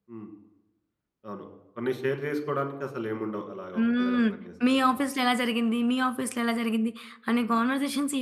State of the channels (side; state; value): both; identical; correlation 1.00